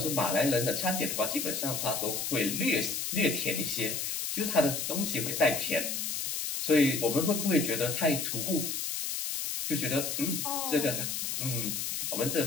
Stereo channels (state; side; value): noise; left; hiss, 2 dB below the sound